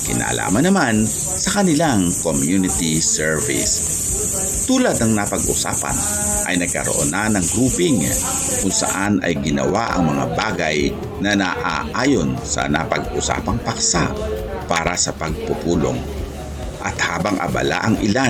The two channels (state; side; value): identical; both; correlation 1.00